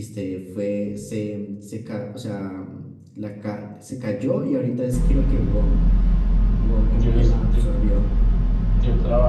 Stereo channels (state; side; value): identical; both; correlation 1.00